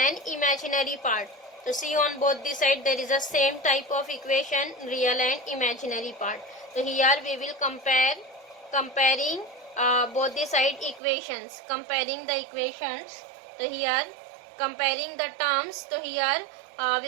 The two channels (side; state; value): left; drops out; at 11.0 s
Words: imaginary part. So see, on both the side there is a same type of equation, real and imaginary part. So here we will comparing both the side equations, comparing the equations. So here comparing the terms, so here